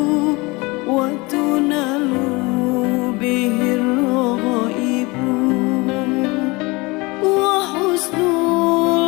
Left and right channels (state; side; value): quieter; right; 24.7 dB